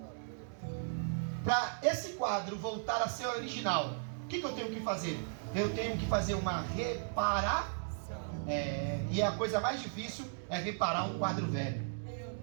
Para esse quadro voltar a ser original, o que eu tenho que fazer? Eu tenho que fazer uma reparação. E a coisa mais difícil é reparar um quadro velho.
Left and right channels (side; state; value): left; silent; digital silence